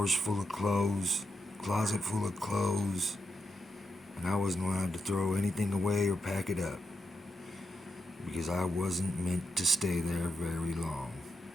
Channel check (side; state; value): both; normal; correlation 0.84